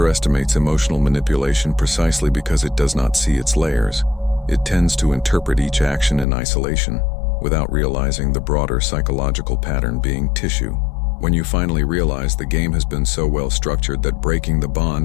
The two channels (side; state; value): right; drops out; at 6.2 s